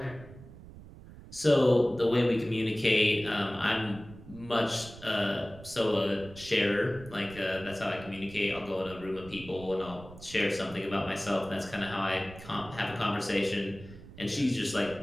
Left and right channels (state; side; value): noise; right; rumble, 17 dB below the sound